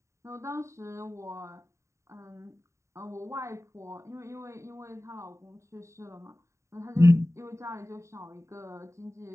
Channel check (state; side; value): late; left; 0.14 ms